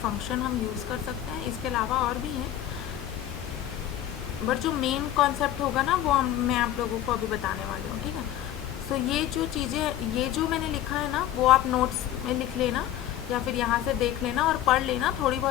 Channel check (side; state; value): right; quieter; 12.2 dB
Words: फंक्शन हम यूज़ कर सकते हैं। इसके अलावा और भी हैं, बट जो मेन कॉन्सेप्ट होगा ना वो मैं आप लोगों को अभी बताने वाली हूँ, ठीक है। सो ये जो चीज़ें, ये जो मैंने लिखा है ना, वो आप नोट्स में लिख लेना या फिर यहाँ से देख लेना और पढ़ लेना। थोड़ी